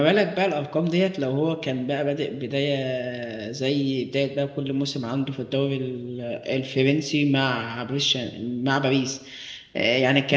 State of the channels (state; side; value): identical; both; correlation 1.00